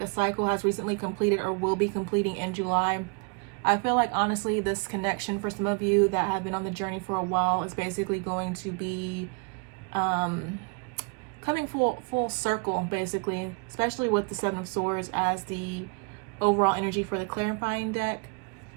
a cycle has recently completed or will be completing in July. I feel like, honestly, this connection for some of you that have been on the journey for a while is basically going to be coming full circle, basically, especially with the Seven of Swords as the overall energy for the clarifying deck.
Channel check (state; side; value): quieter; left; 34.5 dB